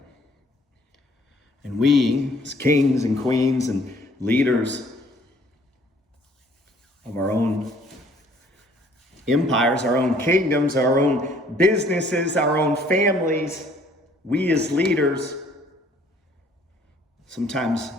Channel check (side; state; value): both; normal; correlation 0.59